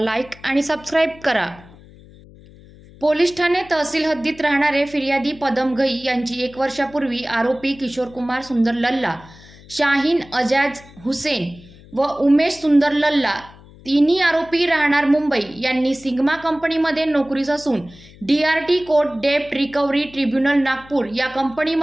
आणि सबस्क्राईब करा। पोलीस ठाणे तहसील हद्दीत राहणारे फिर्यादी पदम घई यांची 1 वर्षापूर्वी आरोपी किशोर कुमार सुंदर लल्ला, शाहीन अजाज हुसेन व उमेश सुंदर लल्ला तिन्ही आरोपी राहणार मुंबई यांनी सिग्मा कंपनीमध्ये नोकरीस असून DRT कोर्ट डेप्ट रिकव्हरी ट्रिब्युनल नागपूर या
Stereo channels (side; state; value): left; noise; hum, 22 dB below the sound